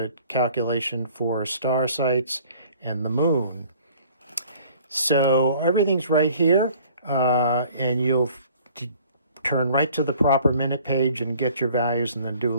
calculation for star sites, and the moon. So everything's right here, and you'll turn right to the proper minute page and get your values and then do a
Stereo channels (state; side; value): inverted; both; correlation -0.53